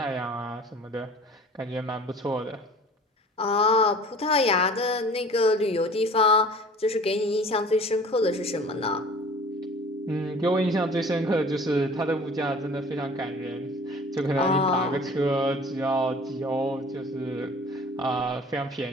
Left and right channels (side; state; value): both; normal; correlation 0.46